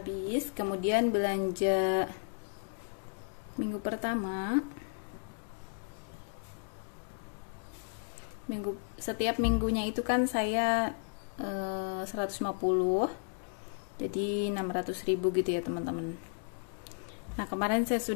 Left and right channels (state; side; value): silent; right; digital silence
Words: Kemudian belanja minggu pertama. Setiap minggunya itu kan saya 150, jadi 600.000 gitu ya teman-teman. Nah, kemarin saya